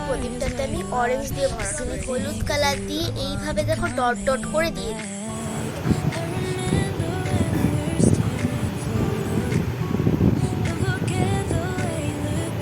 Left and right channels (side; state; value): both; identical; correlation 1.00